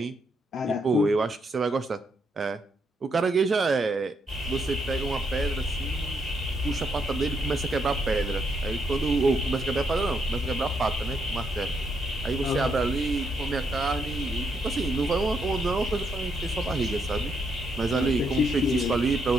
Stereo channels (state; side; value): normal; both; correlation 0.76